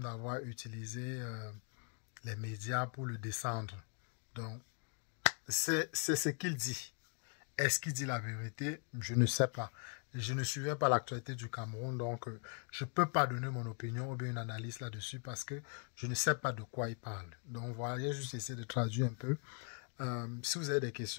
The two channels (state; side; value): quieter; right; 38.8 dB